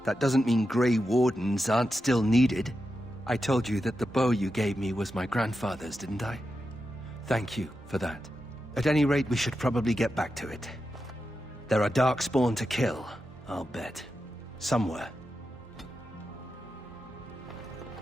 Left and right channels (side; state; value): both; normal; correlation 0.89